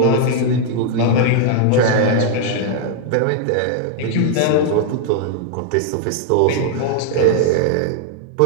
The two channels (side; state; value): both; different; correlation 0.00